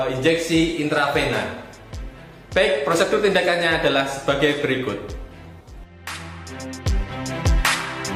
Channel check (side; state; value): both; identical; correlation 1.00